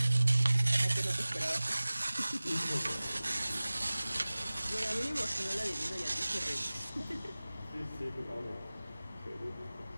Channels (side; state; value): both; inverted; correlation -0.98